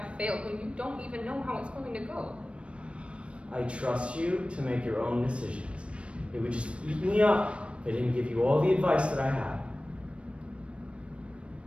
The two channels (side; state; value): left; late; 0.060 ms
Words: failed when you don't even know how it's going to go? I trust you to make your own decisions. It would just eat me up if I didn't give you all the advice that I had.